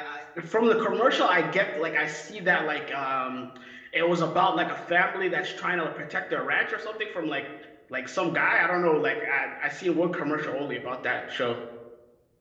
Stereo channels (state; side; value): identical; both; correlation 1.00